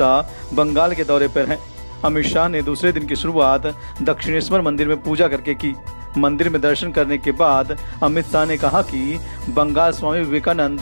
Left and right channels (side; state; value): both; inverted; correlation -1.00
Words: बंगाल के दौरे पर हैं। अमित शाह ने दूसरे दिन की शुरुआत दक्षिणेश्वर मंदिर में पूजा करके की। मंदिर में दर्शन करने के बाद अमित शाह ने कहा कि बंगाल स्वामी